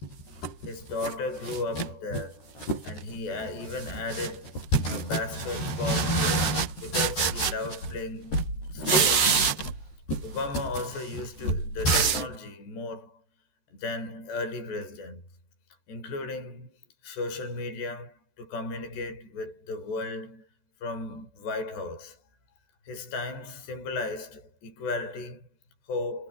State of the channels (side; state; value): right; late; 13 ms